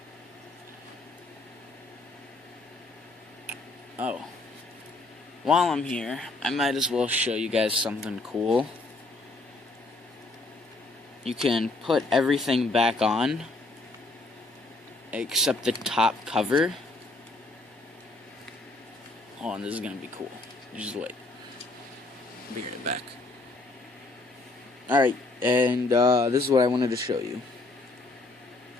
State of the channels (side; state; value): right; quieter; 3.1 dB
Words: Oh. While I'm here, I might as well show you guys something cool. You can put everything back on, except the top cover. Oh, and this is gonna be cool. Just wait. I'll be right back. Alright, and this is what I wanted to show you.